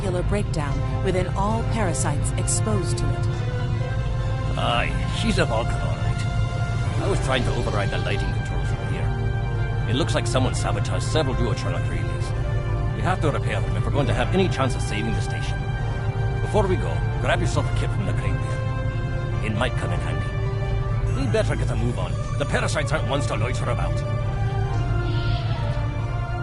breakdown within all parasites exposed to it. Aye, she's a Vulcan, all right. I was trying to override the lighting controls from here. It looks like someone sabotaged several duotronic relays. We have to repair them if we're going to have any chance of saving the station. Before we go, grab yourself a kit from the crate there. It might come in handy. We'd better get a move on. The parasites aren't ones to loiter about.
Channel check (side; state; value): both; identical; correlation 1.00